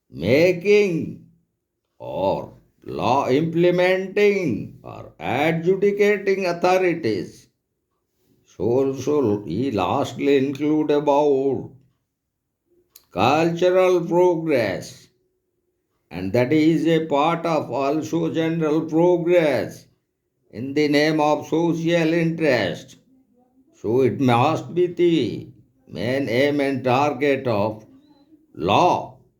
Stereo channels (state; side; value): identical; both; correlation 1.00